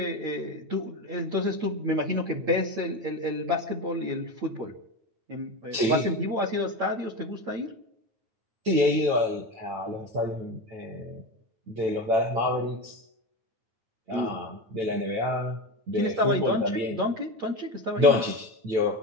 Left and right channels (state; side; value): late; left; 9.0 ms